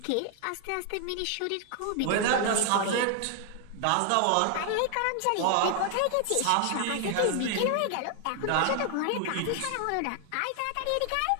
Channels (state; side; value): different; both; correlation 0.00